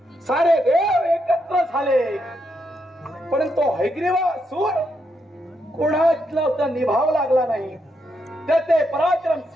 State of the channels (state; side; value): normal; both; correlation 0.80